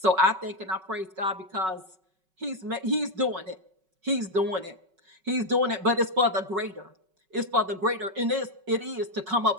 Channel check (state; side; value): late; left; 5.3 ms